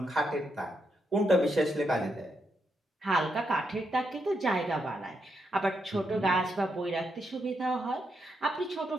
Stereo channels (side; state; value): both; normal; correlation 0.81